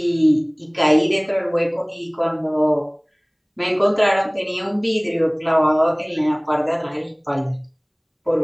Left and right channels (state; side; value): identical; both; correlation 1.00